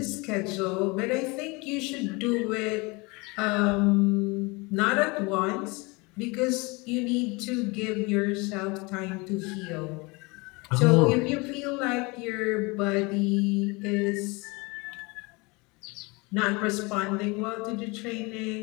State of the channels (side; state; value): right; quieter; 26.6 dB